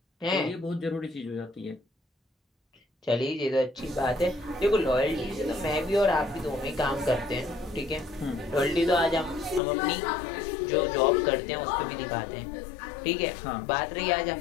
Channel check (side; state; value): right; drops out; at 9.6 s